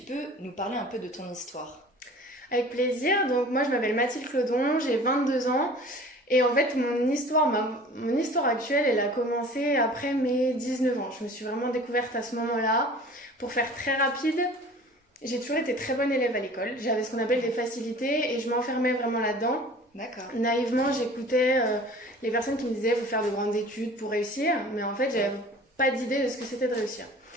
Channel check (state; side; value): normal; both; correlation 0.45